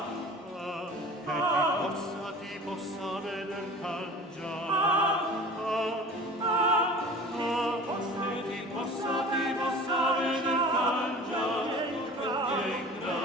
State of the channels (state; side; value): normal; both; correlation 0.41